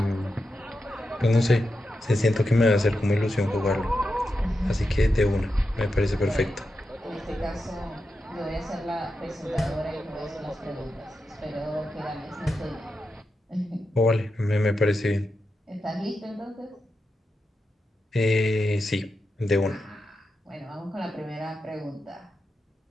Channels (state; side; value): normal; both; correlation 0.88